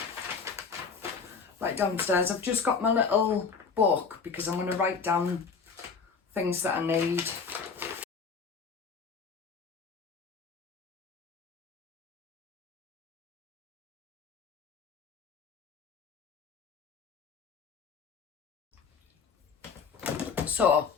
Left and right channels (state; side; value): quieter; right; 5.5 dB